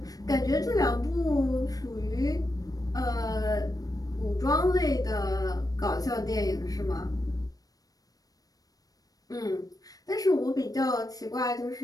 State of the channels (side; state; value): right; late; 0.18 ms